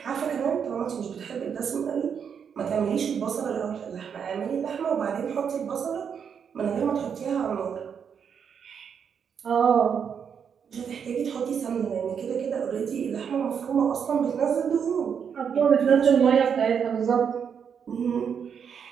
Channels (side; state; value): left; quieter; 7.2 dB